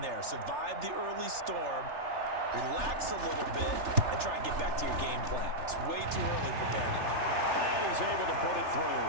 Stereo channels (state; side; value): late; left; 3.4 ms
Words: there. Survive the early storm. Relax a little bit and try and get back to your game plan. It's way too early for panic. And he's able to put it through.